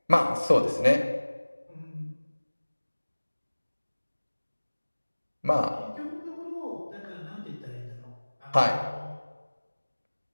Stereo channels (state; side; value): inverted; both; correlation -1.00